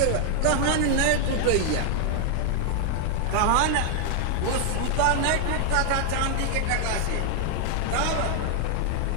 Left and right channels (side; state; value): both; different; correlation 0.00